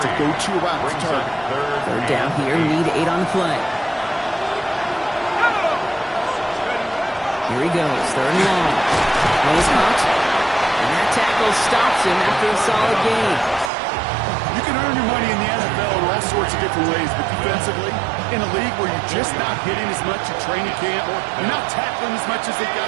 a go-to route to target. 3rd down here, need 8 on the play. Here he goes, 3rd and long. Goes caught, and that tackle stops him after a solid gain. You can earn your money in the NFL in all sorts of different ways, but defensively, in a league where you're just not hitting as much at training camp, you're not tackling as much as they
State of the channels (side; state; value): left; drops out; at 13.7 s